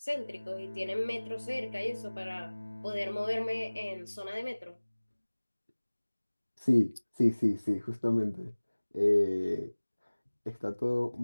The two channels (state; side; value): inverted; both; correlation -1.00